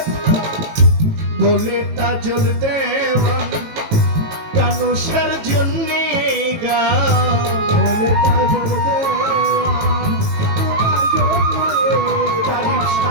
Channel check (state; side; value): late; left; 18 ms